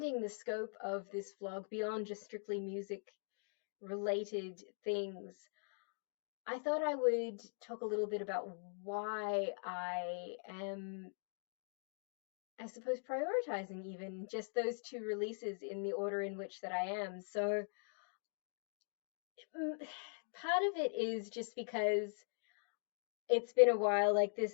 the scope of this vlog beyond just strictly music related things, I thought I would talk a little bit about why I am, I suppose, prioritizing even just those two releases in the order in which that I am. So part of it is just because it's been a while. Like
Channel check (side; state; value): right; silent; digital silence